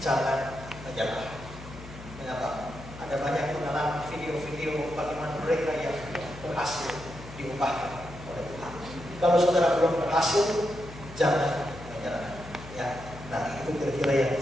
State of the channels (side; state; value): left; noise; hum, 15 dB below the sound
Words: menyerah. Kenapa? Ada banyak pengalaman video-video bagaimana mereka yang berhasil diubahkan oleh Tuhan. Kalau saudara belum berhasil, jangan menyerah. Ya, nah itu kira-kira yang